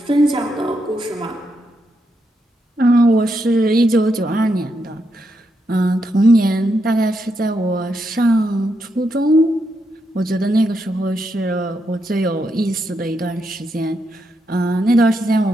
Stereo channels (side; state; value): both; normal; correlation 0.81